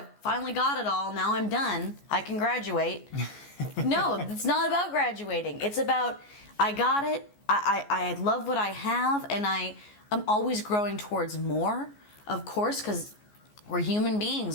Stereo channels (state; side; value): late; right; 14 ms